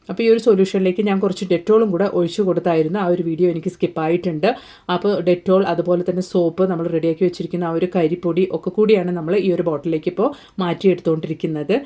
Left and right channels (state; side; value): identical; both; correlation 1.00